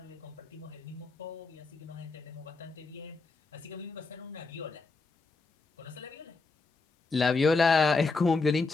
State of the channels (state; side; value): quieter; right; 4.0 dB